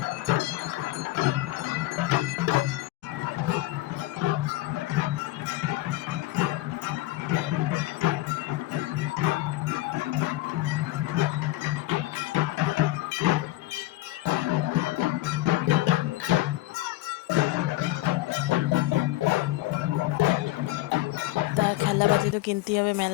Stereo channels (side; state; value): right; quieter; 16.9 dB